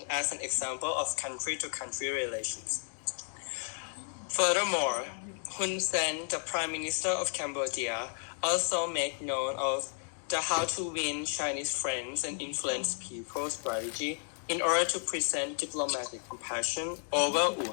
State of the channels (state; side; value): silent; right; 56 dB below the other